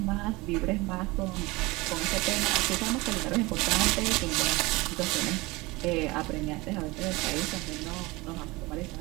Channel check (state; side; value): quieter; left; 22.7 dB